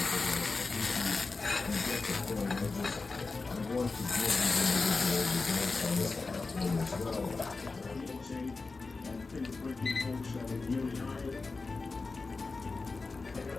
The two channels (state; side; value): quieter; right; 3.9 dB